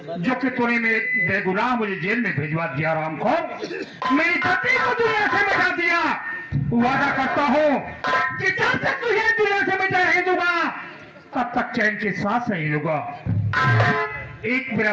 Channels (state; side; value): identical; both; correlation 1.00